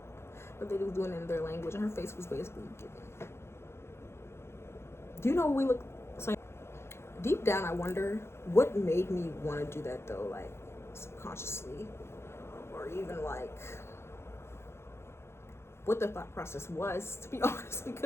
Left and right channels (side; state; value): right; late; 0.12 ms